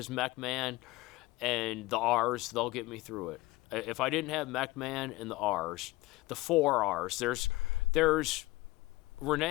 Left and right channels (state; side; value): quieter; right; 20.3 dB